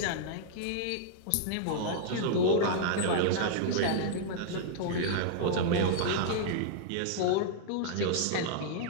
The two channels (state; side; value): different; both; correlation -0.01